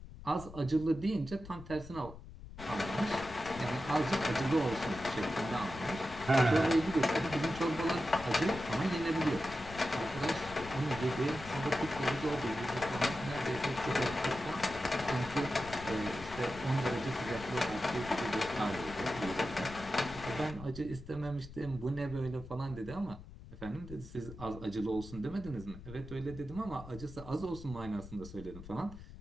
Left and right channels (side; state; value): left; noise; rumble, 14 dB below the sound